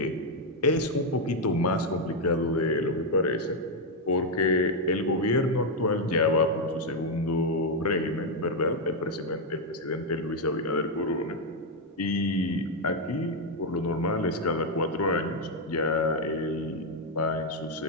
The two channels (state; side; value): normal; both; correlation 0.01